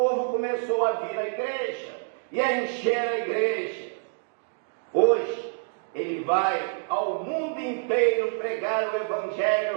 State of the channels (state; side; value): silent; left; 60 dB below the other